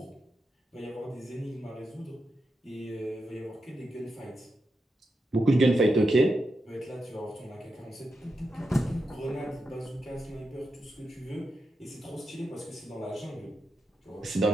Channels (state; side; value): normal; both; correlation 0.87